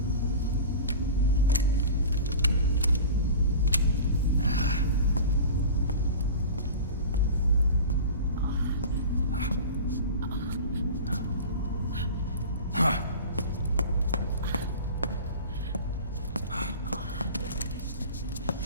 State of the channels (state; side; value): inverted; both; correlation -0.35